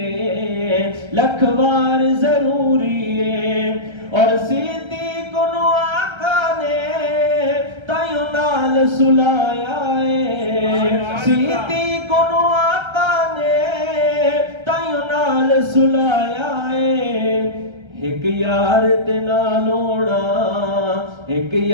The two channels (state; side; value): late; left; 1.3 ms